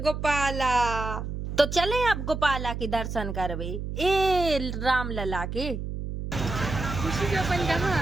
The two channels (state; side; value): noise; right; hum, 5 dB below the sound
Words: तो चले अब गोपाला के दर्शन करवे, ए राम लला के। खुशी जो अपन कहाँ